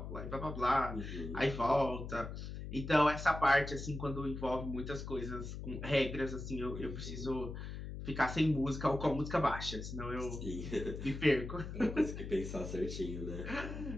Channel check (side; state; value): left; noise; hum, 7 dB below the sound